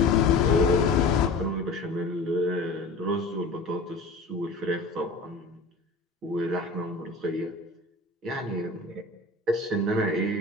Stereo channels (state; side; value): quieter; right; 3.2 dB